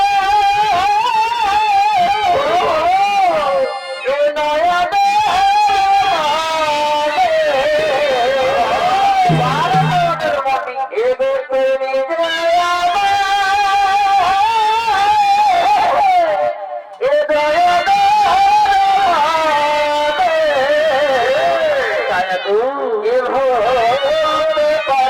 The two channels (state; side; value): identical; both; correlation 1.00